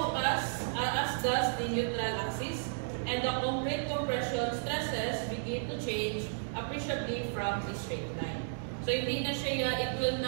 as does the neutral axis, and the concrete compression stresses begin to change appreciably from the straight line. So hindi na siya, it will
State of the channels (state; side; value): silent; left; digital silence